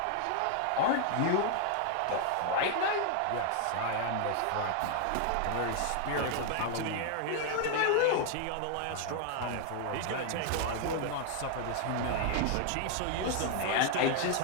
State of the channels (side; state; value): both; different; correlation 0.00